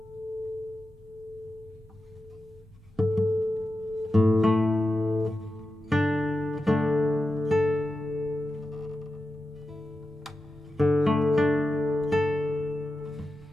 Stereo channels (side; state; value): both; normal; correlation 0.91